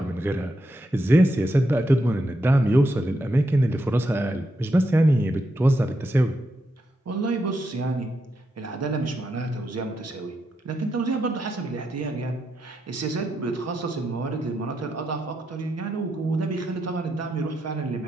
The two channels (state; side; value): normal; both; correlation 0.83